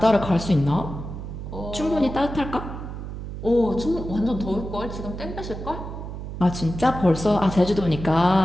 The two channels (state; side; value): noise; right; hum, 8 dB below the sound